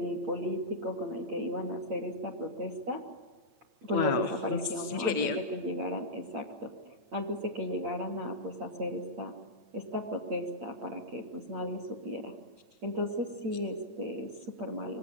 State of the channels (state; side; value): late; left; 8.9 ms